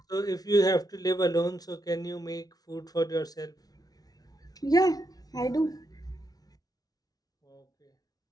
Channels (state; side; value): late; right; 0.19 ms